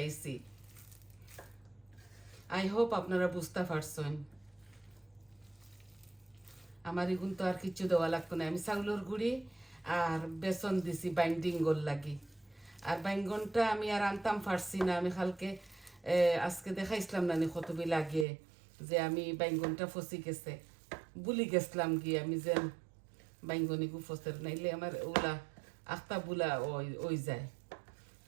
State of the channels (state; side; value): drops out; left; at 18.2 s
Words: আইছি আই হোপ আপনারা বুঝতে পারছেন আমার এগুন তো আর কিছু দেওয়া লাগতো না আমি চাউলের গুঁড়ি আর বেসন দিছি বাইন্ডিং গোল লাগি আর বাইঙ্গনটা আমি আর আনতাম পারছি না আমি কালকে আজকে দেখাইছিলাম না কতবি লাগে যে আমি বাইঙ্গনটা ফসি গেছে বুলি গেছিলাম গিয়ে আমি যে বাইঙ্গনি গু ফসের নাইলে আমার ওলা আখতা বুলা ওই যায়